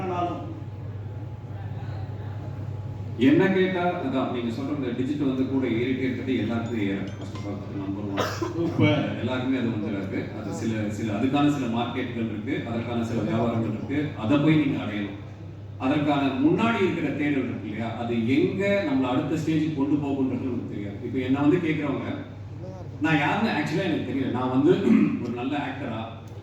என்ன கேட்டால் அதான் நீங்கள் சொல்கிற இந்த டிஜிட்டல் வந்து கூட ஏறிட்டே இருக்கிறது எல்லாருக்குமே ஏறும். ஃபர்ஸ்ட் ஆஃப் ஆல் நம்பர் 1 எல்லாருக்குமே அது வந்து இருக்குது. அது சில அதுக்கான சில மார்க்கெட்டுகள் இருக்குது, அதற்கான சில வியாபாரங்கள் இருக்குது, அதை போய் நீங்கள் அடையணும். அதற்கான முன்னாடி இருக்கிற தேடல் இருக்கு இல்லையா, அது எங்கே நம்மளை அடுத்த ஸ்டேஜுக்கு கொண்டு போகுன்றது நமக்கு தெரியாது. இப்போ என்ன வந்து கேட்குறவங்க நான் யாருன்னு ஆக்சுவலாக எனக்கு தெரியல. நான் வந்து ஒரு நல்ல ஆக்டரா,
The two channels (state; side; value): identical; both; correlation 1.00